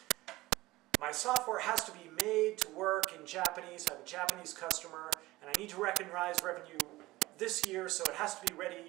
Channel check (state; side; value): quieter; left; 18.8 dB